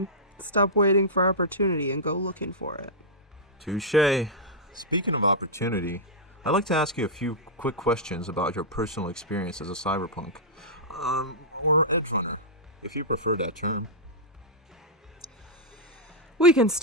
Stop waiting for opportunity and go looking for it. Touché. Speaking of opportunity, I'd like to ask you a few quick questions about your personal experience as a cyberpunk. Or Edgerunner, if you prefer that term. We can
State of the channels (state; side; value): normal; both; correlation -0.11